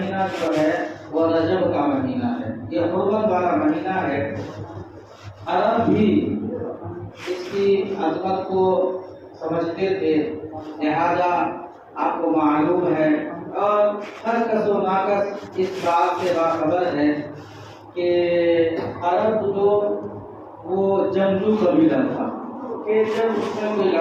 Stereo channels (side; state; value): both; identical; correlation 1.00